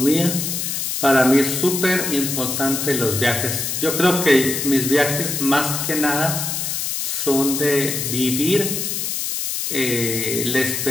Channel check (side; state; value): left; noise; hiss, 2 dB below the sound